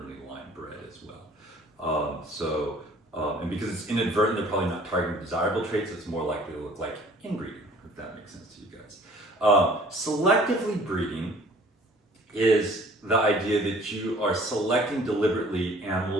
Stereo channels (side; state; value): both; normal; correlation 0.52